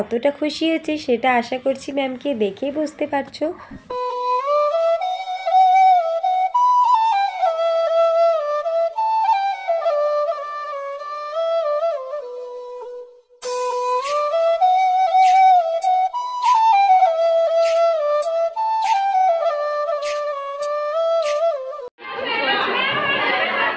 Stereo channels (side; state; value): both; identical; correlation 1.00